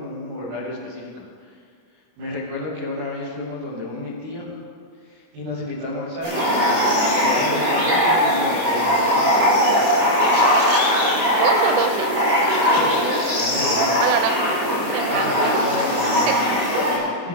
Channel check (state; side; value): late; left; 32 ms